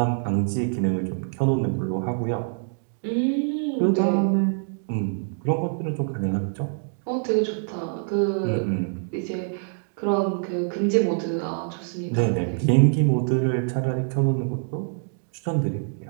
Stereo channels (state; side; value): silent; left; 62 dB below the other